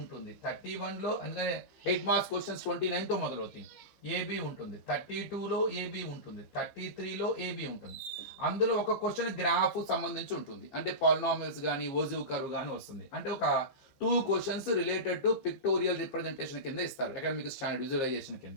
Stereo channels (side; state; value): right; late; 15 ms